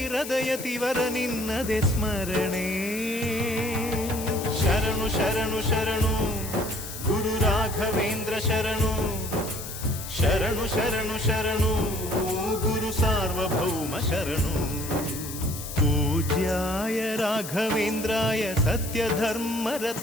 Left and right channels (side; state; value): left; noise; hiss, 10 dB below the sound